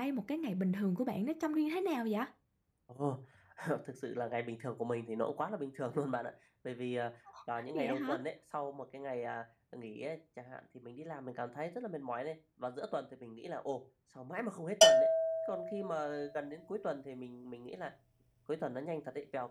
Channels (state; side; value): identical; both; correlation 1.00